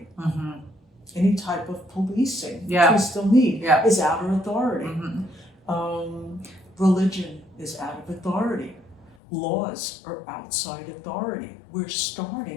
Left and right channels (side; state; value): right; drops out; at 9.2 s